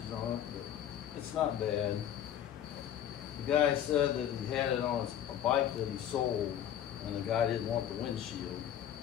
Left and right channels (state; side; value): quieter; right; 10.3 dB